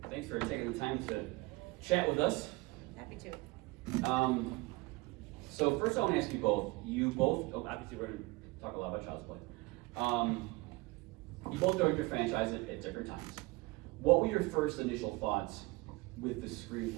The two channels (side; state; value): left; quieter; 23.8 dB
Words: good. Thanks for taking the time to chat with us. Happy to. So first I want to ask you both, obviously we're going to talk a lot about Child's Play. You both joined your franchise at different times. What were your first initial thoughts with the